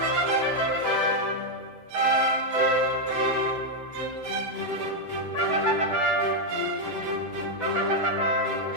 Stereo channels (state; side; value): late; left; 8.0 ms